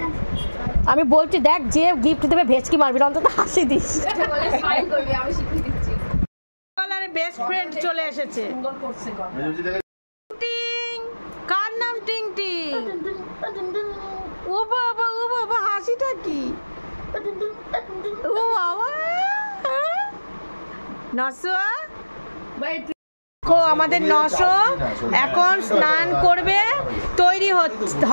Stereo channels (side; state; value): both; inverted; correlation -1.00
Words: আমি বলছি দেখ, যে গিফট দেবে ভেচকি মারবি, অন্তত হাসি দিস। এবারে বেস্ট ফ্রেন্ড চলে এসেছে। কার নাম টিং টিং? ও বাবা হাসিটা কি? ও বাবা নসো আমাদের নশো এখন স্নান করবে, তৈরি